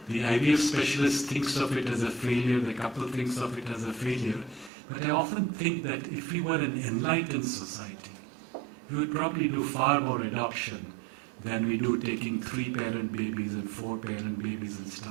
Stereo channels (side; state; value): left; drops out; at 4.7 s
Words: The IVF specialist thinks of it as a failure, the couple thinks of it as a failure. But I often think that if we were an enlightened society, we would probably do far more adoption than we do taking 3-parent babies and 4-parent babies and